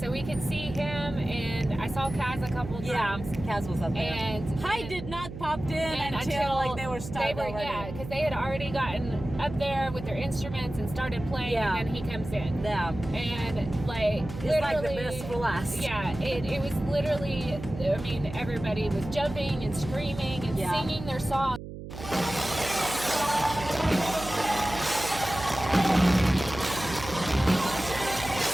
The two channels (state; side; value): noise; right; hum, 11 dB below the sound